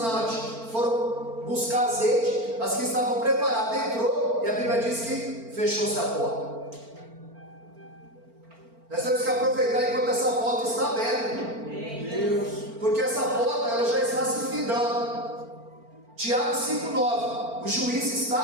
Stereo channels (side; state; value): left; late; 4.4 ms